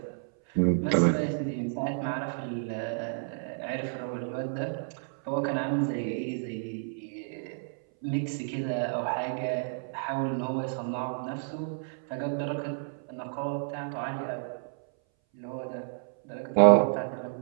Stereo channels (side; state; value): left; silent; 58 dB below the other